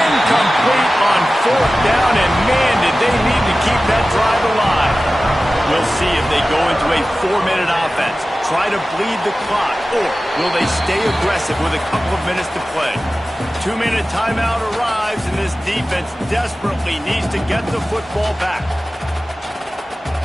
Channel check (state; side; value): normal; both; correlation 0.96